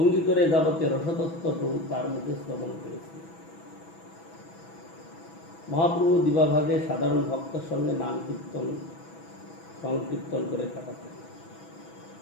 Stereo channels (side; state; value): right; late; 6.1 ms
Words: করে যাবতীয় রসতত্ত্ব প্রভু তার মুখে শ্রবণ করেছিলেন। মহাপ্রভু দিবাভাগে সাধারণ ভক্তের সঙ্গে নাম কীর্তন সংকীর্তন করে কাটাতেন।